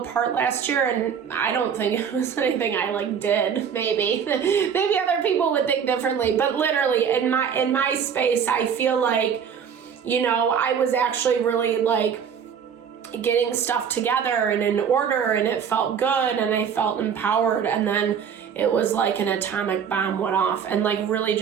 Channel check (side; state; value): left; quieter; 7.4 dB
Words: last year, and I don't think it was anything I did. Maybe other people would think differently, but literally in my space, I feel like, I was actually really getting stuff together and in order, and it felt good and I felt empowered, and then it was like an atomic bomb went off and really